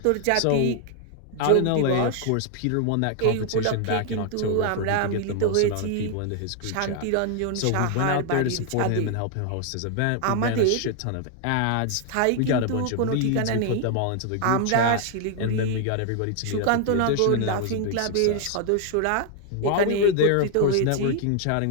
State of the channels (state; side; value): different; both; correlation 0.00